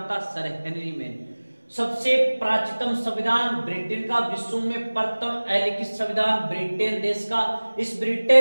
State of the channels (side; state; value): both; inverted; correlation -1.00